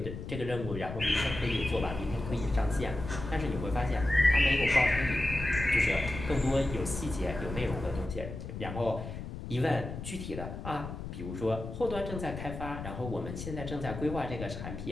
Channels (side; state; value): left; noise; rumble, 8 dB below the sound